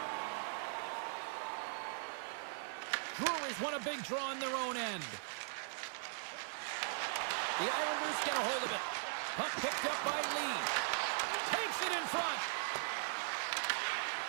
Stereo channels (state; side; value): silent; left; 51 dB below the other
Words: Brewers won a big draw on their own end. The Islanders get a hold of it. Puck picked up by Lee. Takes it in front.